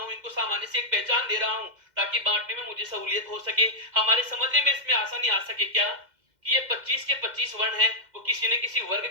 इनको सामान्य से एक पहचान दे रहा हूं ताकि बांटने में मुझे सहूलियत हो सके, हमारे समझने में इसमें आसानी आ सके। क्या कि ये 25 के 25 वर्ण हैं वो किसी न किसी वर्ग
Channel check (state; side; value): late; left; 2.1 ms